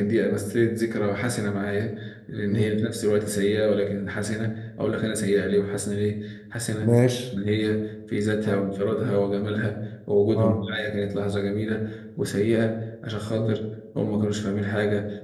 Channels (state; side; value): identical; both; correlation 1.00